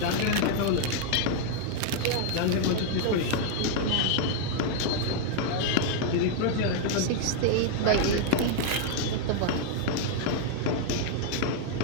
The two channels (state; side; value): different; both; correlation 0.00